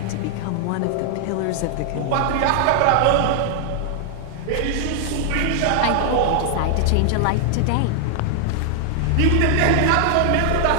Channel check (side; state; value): both; different; correlation 0.00